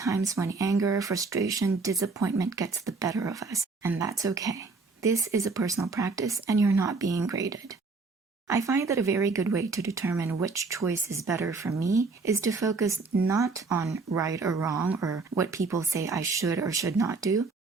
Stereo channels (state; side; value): quieter; left; 4.1 dB